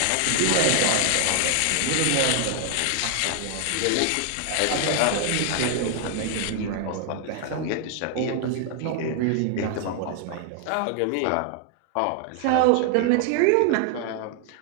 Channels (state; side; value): different; both; correlation 0.00